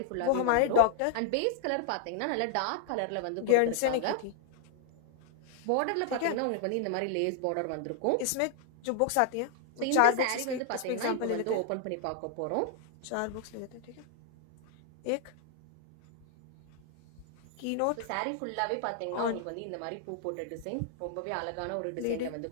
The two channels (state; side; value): different; both; correlation 0.00